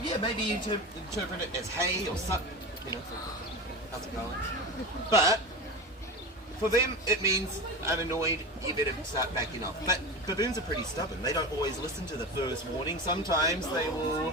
yeah, maybe you interpret it as hey or sup, you know, how's it going? But for them, it means I'm annoyed, you better start backing off. But baboons are pretty stubborn. They don't always listen to the first warning. Sometimes they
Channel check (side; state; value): both; normal; correlation 0.27